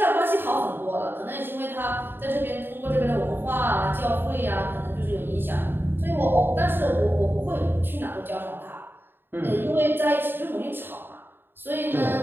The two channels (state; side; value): late; left; 0.099 ms